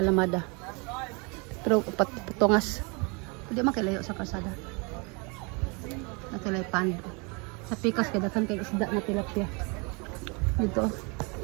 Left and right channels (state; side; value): quieter; left; 31.2 dB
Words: Pero patungas. Pwede makilayo sa kalsada. Natulay pando. Sa pikas kay daghan kay isda na tilapia. Dito.